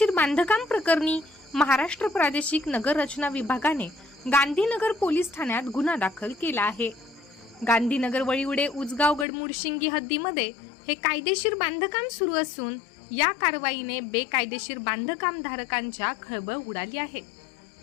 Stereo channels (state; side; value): drops out; right; at 9.2 s